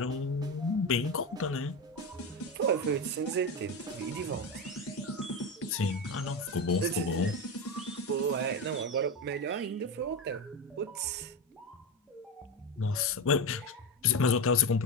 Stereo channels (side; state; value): both; normal; correlation 0.18